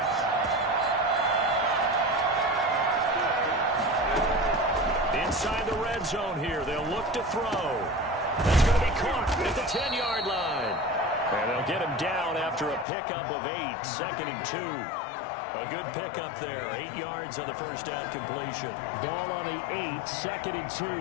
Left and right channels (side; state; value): right; drops out; at 12.9 s